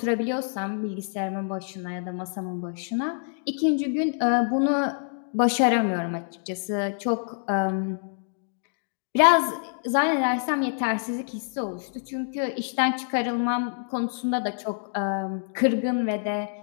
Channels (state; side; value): silent; right; digital silence